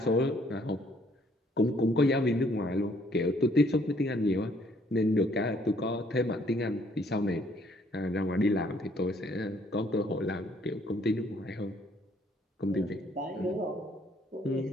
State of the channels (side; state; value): both; normal; correlation 0.64